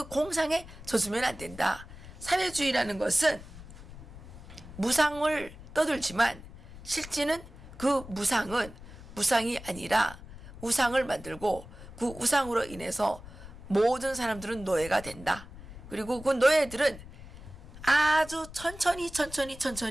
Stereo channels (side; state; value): left; noise; rumble, 16 dB below the sound